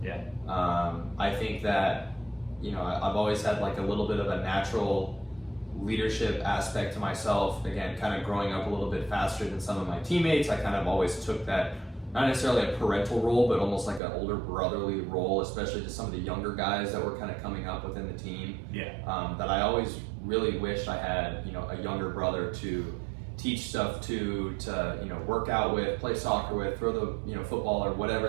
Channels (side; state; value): left; drops out; at 14.0 s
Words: Yeah. I think that, I've always had like a little bit of a natural leadership aspect to myself. Again, kind of growing up a little bit faster than some of my teammates, I kind of always took that, not necessarily a parental role, but almost like an older brotherly role, especially to some of the younger guys that were kind of coming up within the team. Yeah. That I always really wished I had, a younger brother to teach stuff to work out with, play soccer with, throw the, football or whatever